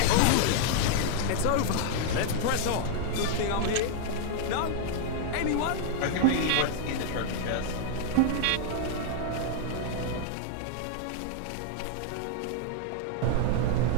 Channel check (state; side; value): different; both; correlation 0.00